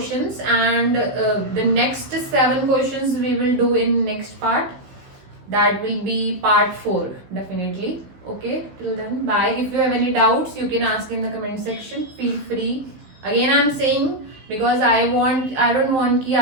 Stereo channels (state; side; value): late; left; 16 ms